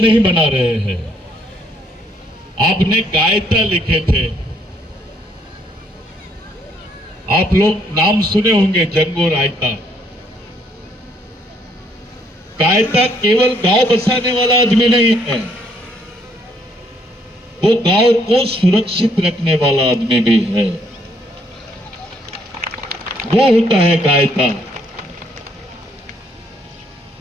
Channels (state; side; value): normal; both; correlation 0.68